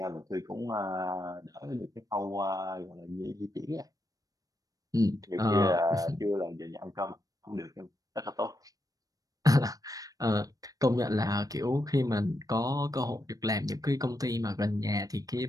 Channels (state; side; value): late; left; 0.18 ms